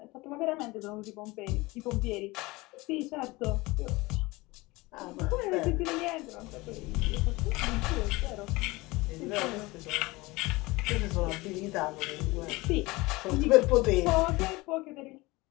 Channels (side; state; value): right; quieter; 22.0 dB